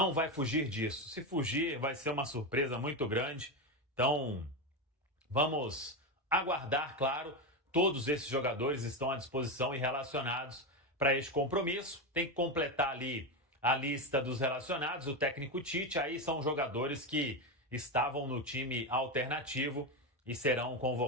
vai fugir disso. Se fugir, vai ser uma surpresa muito grande. Então, vamos aguardar, claro. Todos esses jogadores estão à disposição e relacionados para este compromisso. Tem que completar ali a lista dos relacionados, o técnico Tite. Aí são jogadores que estavam no time alternativo e serão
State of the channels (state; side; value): normal; both; correlation 0.13